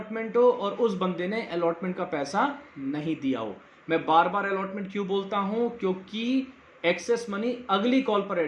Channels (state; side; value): identical; both; correlation 1.00